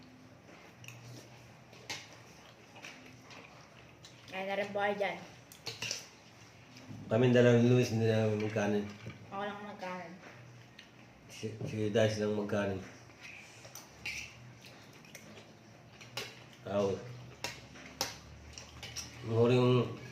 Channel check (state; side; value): identical; both; correlation 1.00